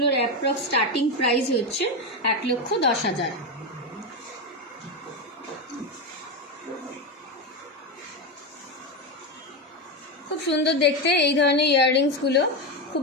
অ্যাপ্রক্স স্টার্টিং প্রাইস হচ্ছে 1,10,000। খুব সুন্দর দেখতে এই ধরনের ইয়াররিংসগুলো,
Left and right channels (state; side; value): normal; both; correlation 0.13